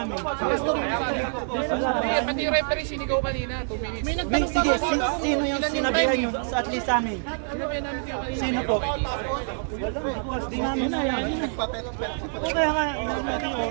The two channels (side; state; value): left; silent; 61 dB below the other